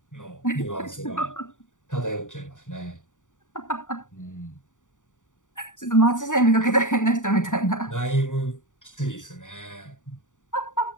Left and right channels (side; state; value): right; late; 0.86 ms